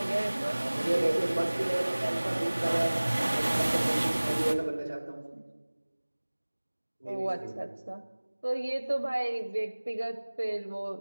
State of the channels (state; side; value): inverted; both; correlation -1.00